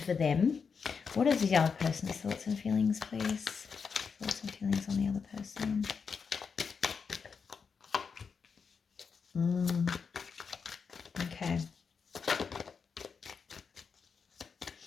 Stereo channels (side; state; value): right; quieter; 5.8 dB